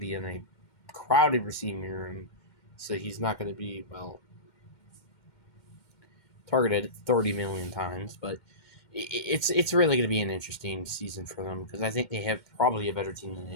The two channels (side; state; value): right; late; 2.1 ms